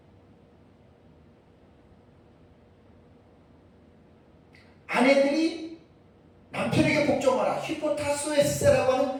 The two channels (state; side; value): identical; both; correlation 1.00